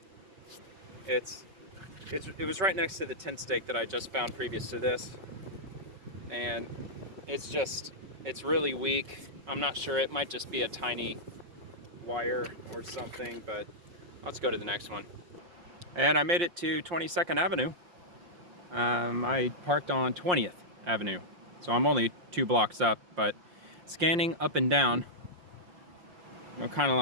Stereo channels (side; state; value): left; late; 5.7 ms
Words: it was right next to the tent stake that I just found previous to this. And it's really weak. I'm not sure, it might just be a tiny wire or something, but let's go to the next one. And I made it to 22nd Avenue. I parked on 20th Avenue, so I'm only 2 blocks up, but scanning up and down, you know, kind of